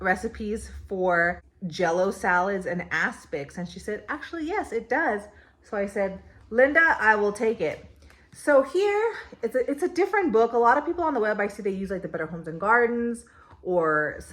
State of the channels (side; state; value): both; identical; correlation 1.00